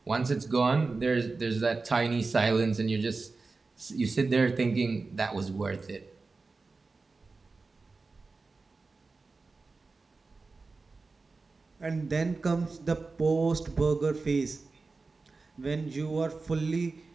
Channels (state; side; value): quieter; left; 3.9 dB